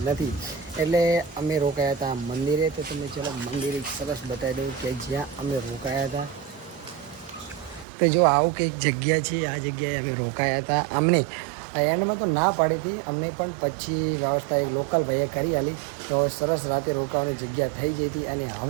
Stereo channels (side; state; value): left; drops out; at 7.9 s